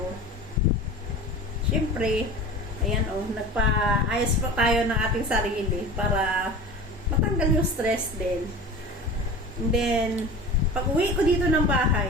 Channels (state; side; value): normal; both; correlation 0.35